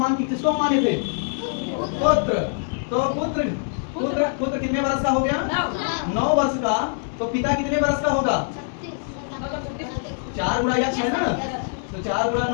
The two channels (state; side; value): silent; right; digital silence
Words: किसको माने थे, पुत्र, तो पुत्र कितने वर्ष का हो गया, 9 वर्ष का। तो पिता कितने वर्ष का होगा, 4 गुणा यक्स है ना, तो 4 गुणा